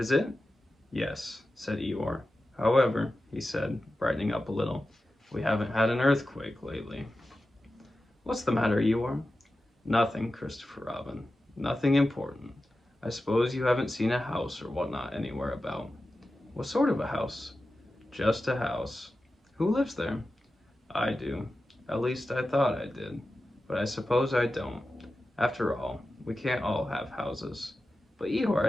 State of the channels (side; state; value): both; normal; correlation 0.93